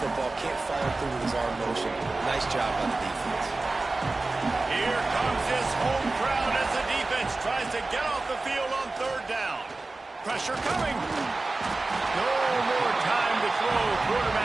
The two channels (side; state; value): left; quieter; 3.3 dB